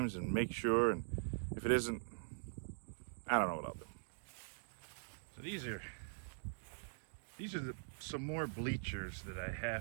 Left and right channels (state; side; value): silent; left; digital silence